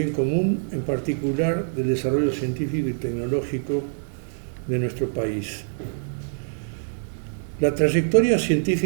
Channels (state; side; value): silent; left; digital silence